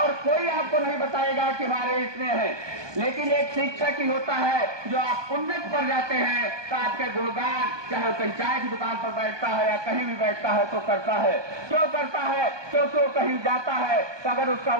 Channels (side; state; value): left; late; 1.2 ms